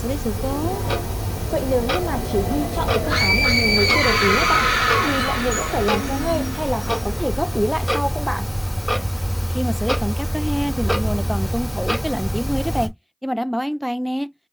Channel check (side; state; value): both; identical; correlation 1.00